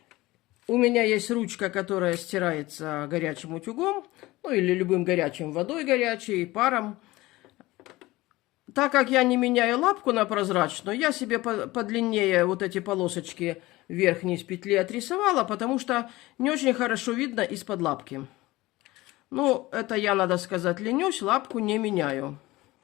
У меня есть ручка, которая стирается горячим утюгом, или любым горячим, водой горячей, паром. Так как я не меняю лапку на прозрачную, я себе подлиннее вот эти полосочки верхней с петли отрисовала, потому что не очень хорошо видно из-под лапки. Это я, надо сказать, ленюсь, лапку не меняю.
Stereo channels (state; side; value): quieter; right; 19.3 dB